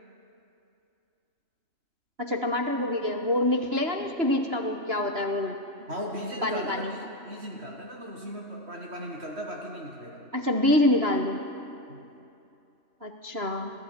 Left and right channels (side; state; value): left; late; 2.9 ms